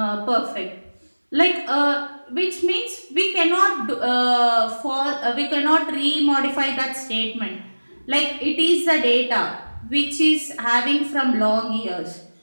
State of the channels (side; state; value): both; inverted; correlation -1.00